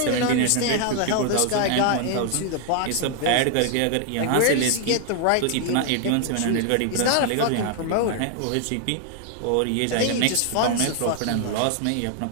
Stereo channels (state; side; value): different; both; correlation 0.00